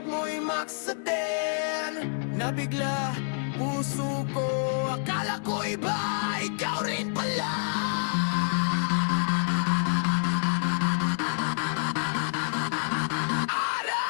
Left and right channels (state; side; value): silent; right; digital silence